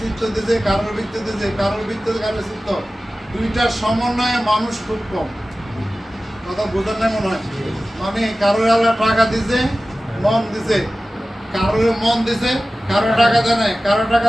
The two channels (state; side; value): normal; both; correlation 0.96